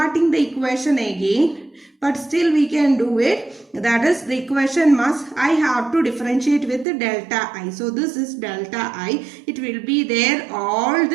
the equation again, but still we can do it. That is, the equation I have to differentiate with the delta I. So this is delta I. It will be there all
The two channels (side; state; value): left; drops out; at 6.9 s